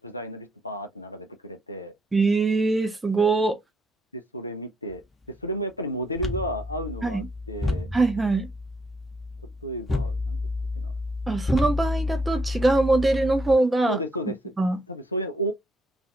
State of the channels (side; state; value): both; normal; correlation 0.75